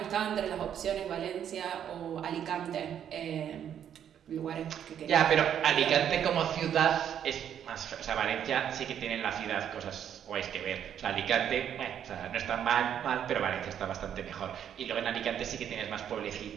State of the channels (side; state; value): left; quieter; 9.3 dB